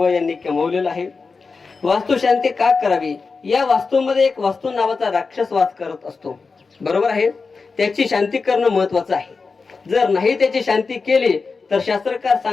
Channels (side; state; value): right; quieter; 4.5 dB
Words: यांनी कमवलेलं आहे. वास्तुशांती का करावी? या वास्तूमध्ये एक वास्तू नावाचा राक्षस वास करत असतो, बरोबर आहे. त्याची शांती करणं महत्वाचं आहे. जर नाही त्याची शांती केली तर शास्त्रकार